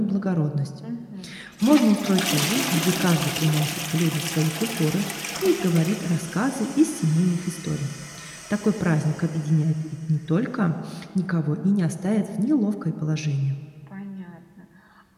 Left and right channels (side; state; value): both; identical; correlation 1.00